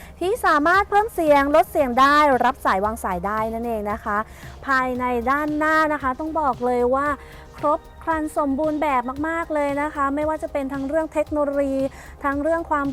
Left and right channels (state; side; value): identical; both; correlation 1.00